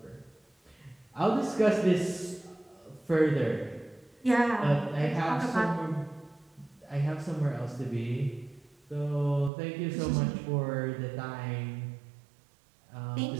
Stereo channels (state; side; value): drops out; left; at 9.5 s